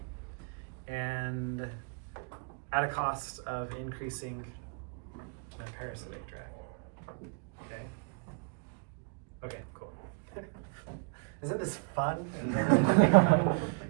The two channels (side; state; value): left; quieter; 34.7 dB